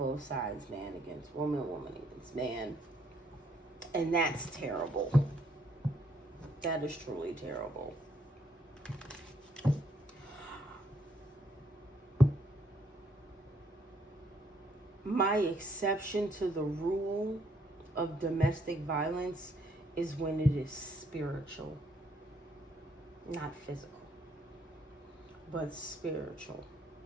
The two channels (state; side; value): normal; both; correlation 0.69